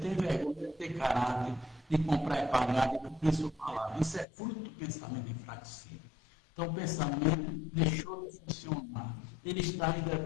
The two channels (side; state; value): right; drops out; at 4.2 s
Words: vergonha de ter caráter, de comprar e pagar, de cumprir sua palavra. Isso é fruto do pensamento enfraquecido. Então, o pensamento deixou de funcionar. Ele está ainda